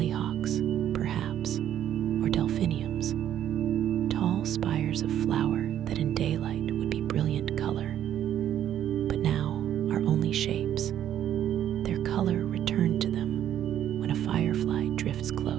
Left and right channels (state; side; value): quieter; left; 10.8 dB